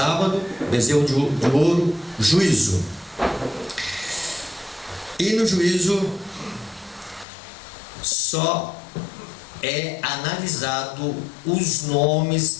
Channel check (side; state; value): right; drops out; at 7.2 s